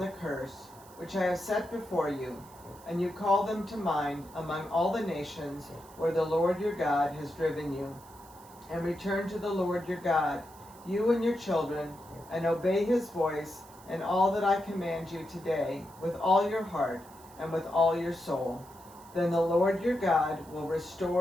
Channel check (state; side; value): noise; right; hiss, 23 dB below the sound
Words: curse, which I have set before you, and you call them to mind among all the nations where the Lord your God has driven you, and return to the Lord your God, you and your children, and obey his voice and all that I command you today, with all your heart and with all your soul, then the Lord your God will